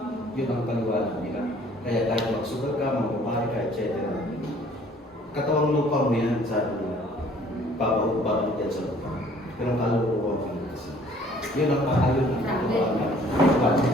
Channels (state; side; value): normal; both; correlation 0.56